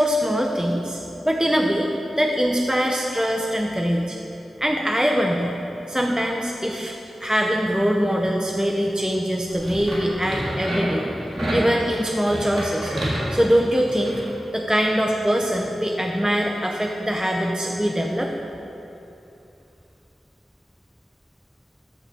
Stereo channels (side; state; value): both; normal; correlation 0.95